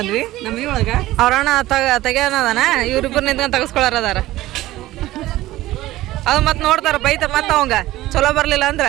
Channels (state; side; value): quieter; left; 16.4 dB